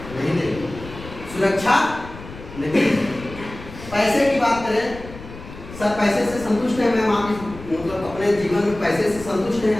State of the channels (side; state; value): left; noise; rumble, 15 dB below the sound